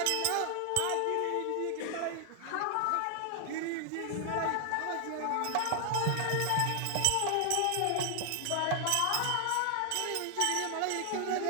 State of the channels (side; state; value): both; different; correlation 0.00